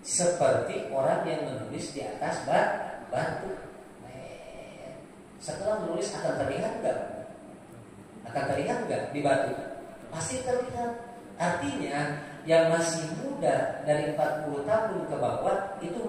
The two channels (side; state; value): both; identical; correlation 1.00